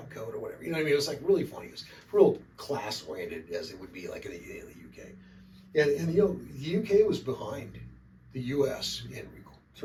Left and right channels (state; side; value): identical; both; correlation 1.00